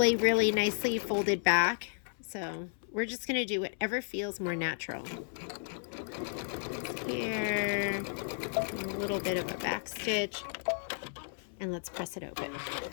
really nicely folded back. So we're just going to do whatever feels more natural. Here, a little bit of a back stitch, and let's press it open.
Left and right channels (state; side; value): silent; right; 56 dB below the other